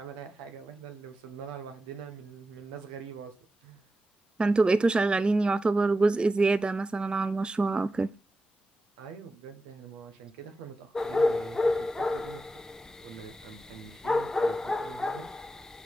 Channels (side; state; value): both; normal; correlation 0.92